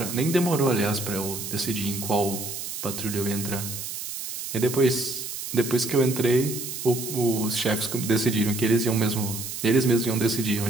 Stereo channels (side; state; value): right; noise; hiss, 7 dB below the sound